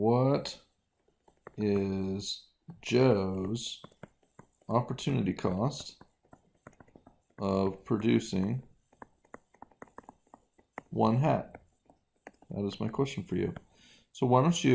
is Joe's opportunity cost of producing 1 hat? That is my question for you. So why don't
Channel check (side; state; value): both; identical; correlation 1.00